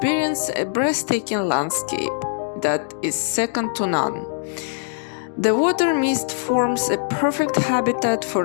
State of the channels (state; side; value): silent; right; digital silence